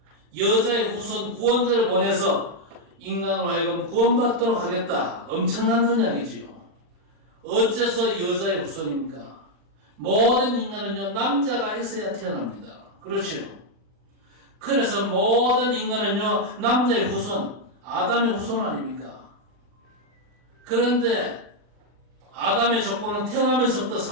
여자의 후손 구원자를 보내서 인간으로 하여금 구원받도록 하겠다. 엄청난 언약이지요. 어째서 여자의 후손입니까? 모든 인간은요, 남자가 있어야 태어납니다. 그렇죠? 그래서 모든 인간은요, 남자의 후손, 아담의 후손 아닙니까? 그런데 아담의 족보는 태어나면서부터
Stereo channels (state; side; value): late; left; 40 ms